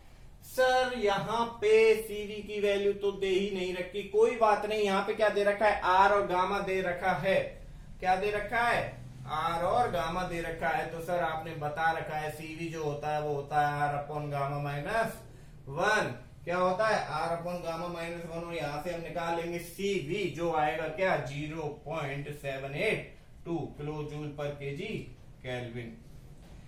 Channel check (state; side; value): identical; both; correlation 1.00